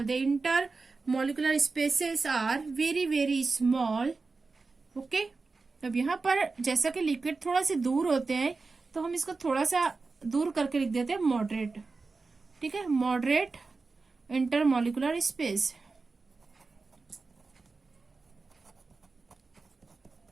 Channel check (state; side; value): quieter; left; 4.0 dB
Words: The intermolecular spaces are very very small, okay. अब यहाँ पर जैसा कि लिक्विड थोड़ा से दूर होते हैं तो हम इसको थोड़ा सा दूर करके लिख देते हैं मॉडरेट, ठीक है। Moderate inter molecular space.